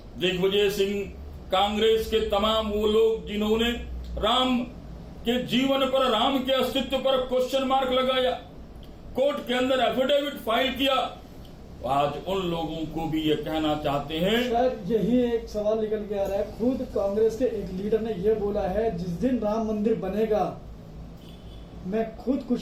दिग्विजय सिंह, कांग्रेस के तमाम वो लोग जिन्होंने राम के जीवन पर, राम के अस्तित्व पर क्वेश्चन मार्क लगाया, कोर्ट के अंदर एफिडेविट फाइल किया, आज उन लोगों को भी ये कहना चाहते हैं। सर, यही एक सवाल निकल के आ रहा है। खुद कांग्रेस के एक लीडर ने यह बोला है, जिस दिन राम मंदिर बनेगा मैं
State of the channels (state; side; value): identical; both; correlation 1.00